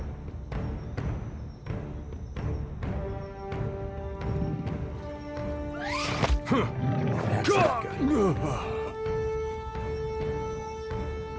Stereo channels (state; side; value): identical; both; correlation 1.00